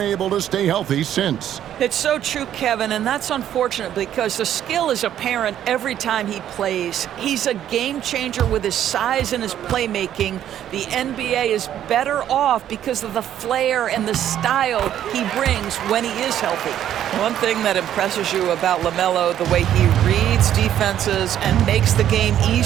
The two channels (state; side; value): quieter; left; 10.9 dB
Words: able to stay healthy since. It's so true, Kevin, and that's unfortunate because the skill is apparent every time he plays. He's a game changer with his size and his playmaking. The NBA is better off because of the flair and the style he brings when he is healthy. One thing that impresses you about LaMelo, the way he reads defenses and makes the game